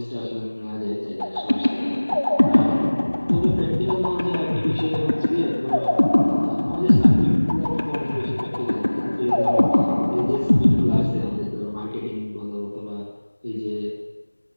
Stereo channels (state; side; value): inverted; both; correlation -1.00